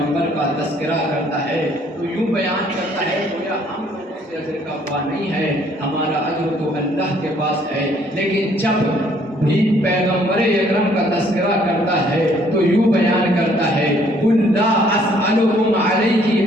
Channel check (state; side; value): normal; both; correlation 0.63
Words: کا تذکرہ کرتا ہے تو یوں بیان کرتا ہے گویا ہم سے اجر کا خواہ نہیں ہے، ہمارا اجر تو اللہ کے پاس ہے، لیکن جب بھی پیغمبر اکرم کا تذکرہ کرتا ہے تو یوں بیان کرتا ہے قل لا اسألکم علیہ